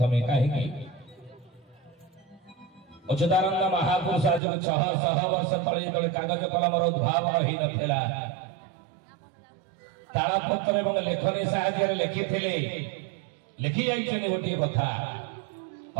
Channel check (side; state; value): left; drops out; at 4.4 s